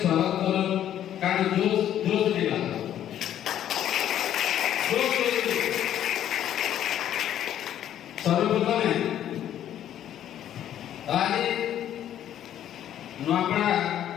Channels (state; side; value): quieter; right; 11.0 dB